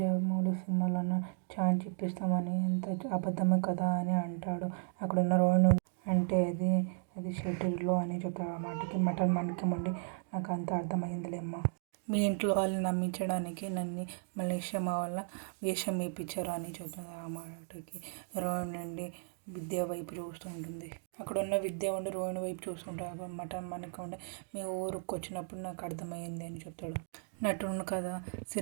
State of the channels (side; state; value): left; silent; 54 dB below the other